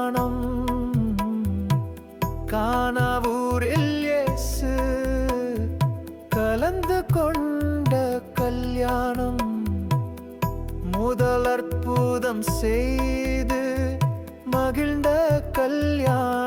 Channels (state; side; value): identical; both; correlation 1.00